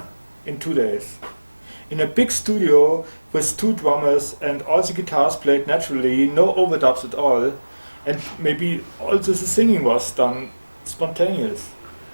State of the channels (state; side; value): inverted; both; correlation -1.00